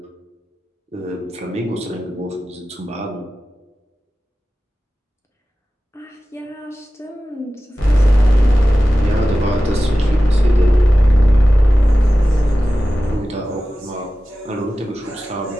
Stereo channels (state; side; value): normal; both; correlation 0.95